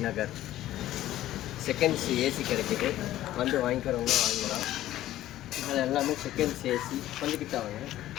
நகர் செகண்ட்ஸ் ஏசி கிடைக்குது. வந்து வாங்கிக்கிறவங்க வாங்கலாம். அது எல்லாமே செகண்ட்ஸ் ஏசி. கொஞ்சம் கிட்ட வாங்க.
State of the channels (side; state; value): right; quieter; 14.0 dB